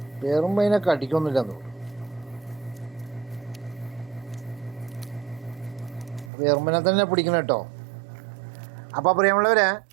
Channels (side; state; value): left; drops out; at 6.3 s